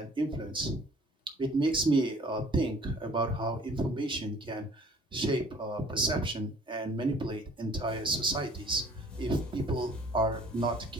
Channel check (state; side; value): normal; both; correlation 0.53